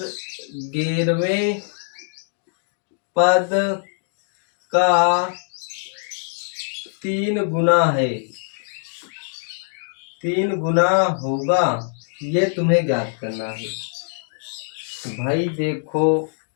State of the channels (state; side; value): silent; right; digital silence